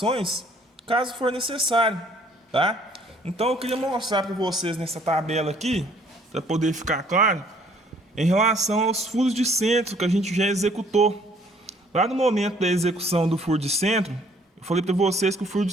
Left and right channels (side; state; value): both; normal; correlation 0.61